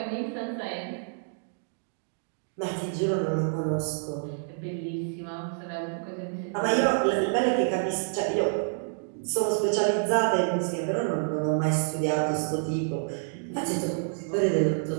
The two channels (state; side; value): silent; left; digital silence